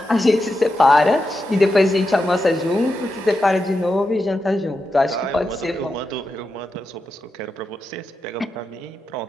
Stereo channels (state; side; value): normal; both; correlation 0.88